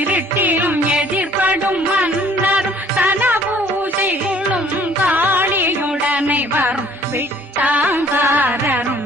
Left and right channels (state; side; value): normal; both; correlation 0.57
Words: எதிர்படும் மன்னரும் தன பூஜைகளும் காளியுடனை வரும் விட்டாங்காரரும்